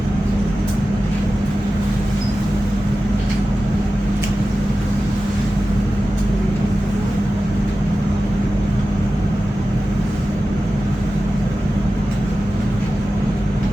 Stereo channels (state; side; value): normal; both; correlation 0.94